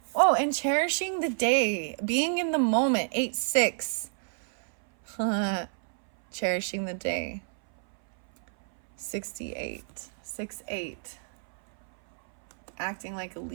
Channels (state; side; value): silent; left; 59 dB below the other